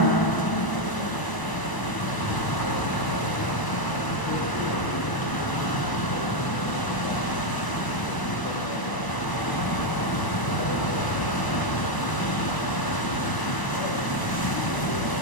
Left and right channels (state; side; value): late; right; 1.0 ms